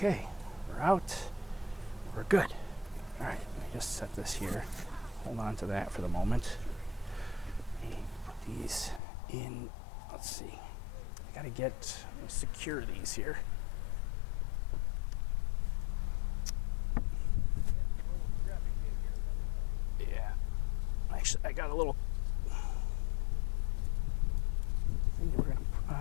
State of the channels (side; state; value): right; drops out; at 9.0 s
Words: we're out. We're good. All right, let me just set this here. Hold on to that for the moment. Put these in. Let's see. I got to secure these here. Actually, I got a little thing we're gonna